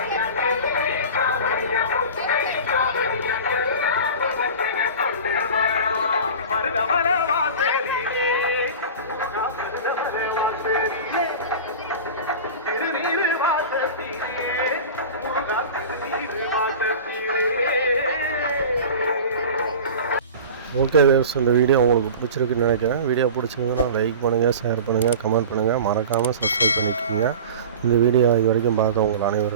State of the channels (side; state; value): both; inverted; correlation -0.34